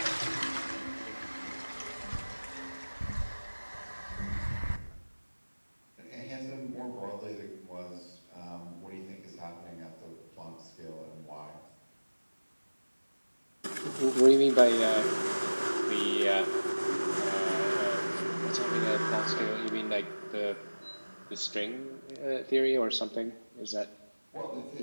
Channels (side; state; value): both; inverted; correlation -1.00